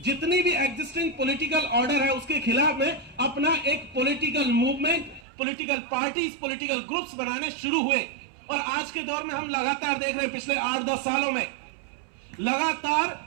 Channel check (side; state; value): left; drops out; at 5.2 s